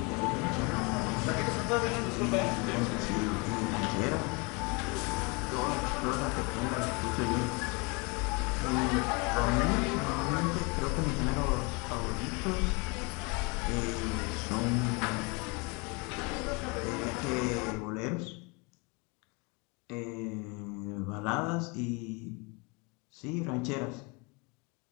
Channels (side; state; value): right; quieter; 29.9 dB